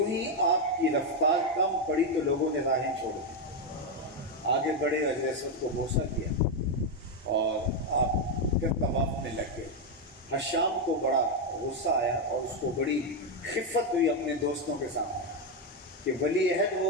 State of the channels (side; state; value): both; normal; correlation 0.04